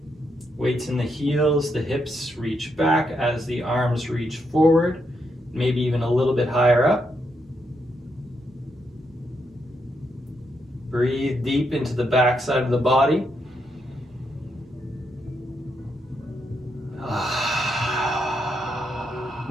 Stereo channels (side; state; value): both; normal; correlation 0.80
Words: Weights in the heels, the hips reach back as the arms reach forward, maybe even a little bit higher up. Breathe deep into the back side of the body.